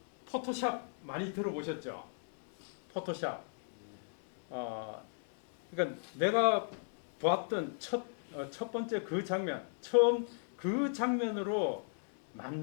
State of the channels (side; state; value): right; silent; digital silence